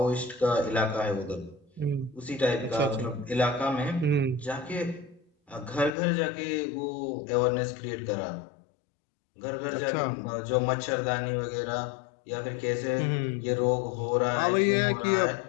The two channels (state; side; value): drops out; right; at 6.0 s